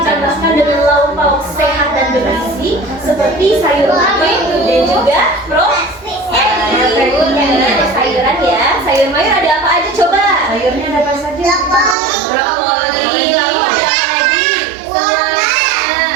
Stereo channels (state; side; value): drops out; left; at 12.0 s